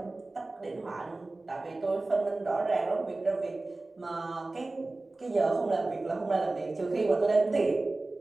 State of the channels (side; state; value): left; quieter; 3.1 dB